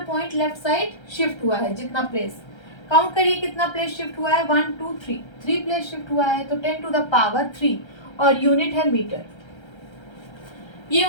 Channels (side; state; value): right; late; 1.3 ms